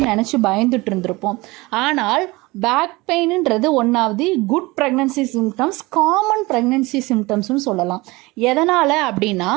நினச்சி பயந்துட்டு இருந்திருப்போம். ஆனால் பேக் பெயின்ன்றது ஒன்றாவது good pregnancy symptoms, common pregnancy சிம்டம்ஸ்னு சொல்லலாம். எதனால் அப்படின்னா,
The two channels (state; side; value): quieter; left; 22.4 dB